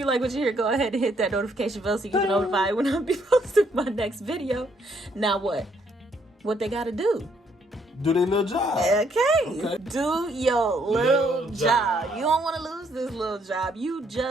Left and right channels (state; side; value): normal; both; correlation 0.70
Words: like what you hear, go ahead and hit that notification bell so you can notify when I be posting my next video. Now what? What they gotta do? Do their little job. Okay. Do your little job. You don't want to lose this little job. You